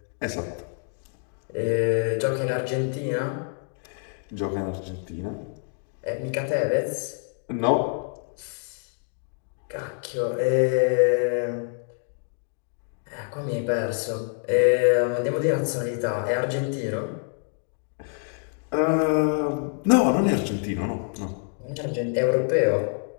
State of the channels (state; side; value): silent; right; 56 dB below the other